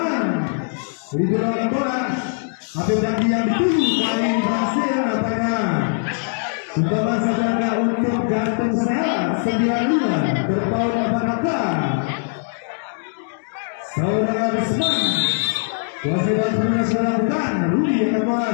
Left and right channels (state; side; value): silent; right; 63 dB below the other